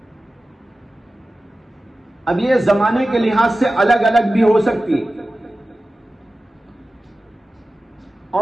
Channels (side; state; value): both; normal; correlation 0.95